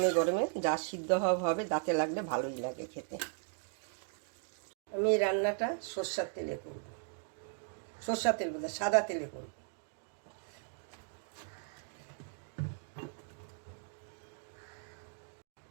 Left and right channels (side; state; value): left; silent; 53 dB below the other